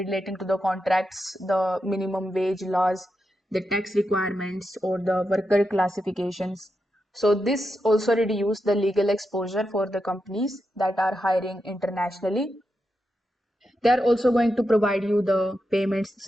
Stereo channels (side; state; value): both; normal; correlation 0.87